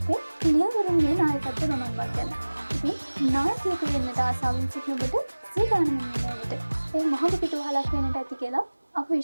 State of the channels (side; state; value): both; inverted; correlation -1.00